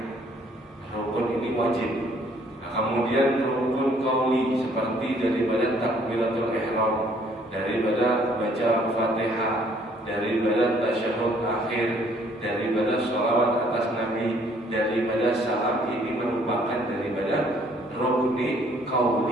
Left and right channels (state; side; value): normal; both; correlation 0.62